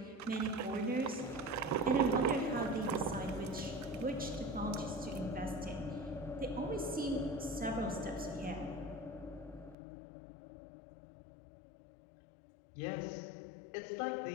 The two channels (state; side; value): drops out; right; at 9.8 s